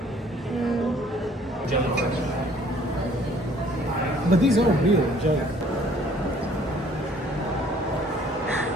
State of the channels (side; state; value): both; normal; correlation 0.58